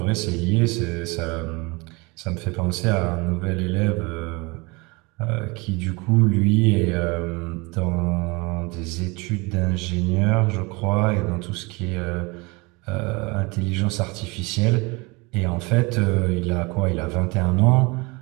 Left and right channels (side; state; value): left; quieter; 26.4 dB